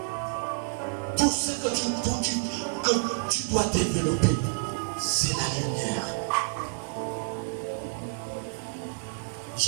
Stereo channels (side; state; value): left; silent; digital silence